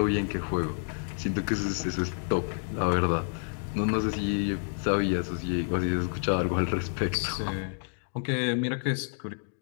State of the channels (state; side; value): silent; right; digital silence